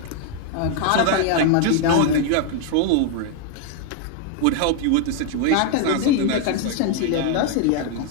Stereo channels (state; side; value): different; both; correlation 0.00